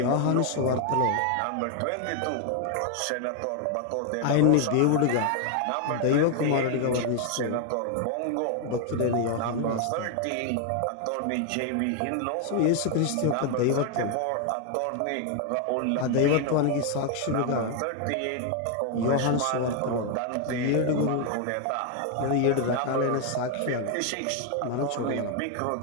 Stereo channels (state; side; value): different; both; correlation 0.01